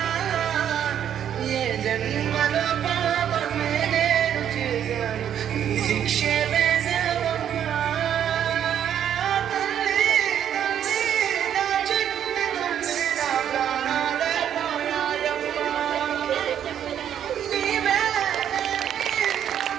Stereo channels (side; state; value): left; quieter; 9.6 dB